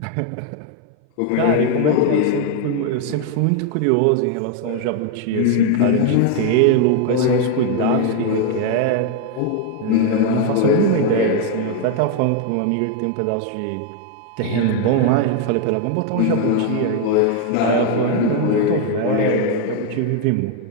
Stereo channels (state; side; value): different; both; correlation 0.01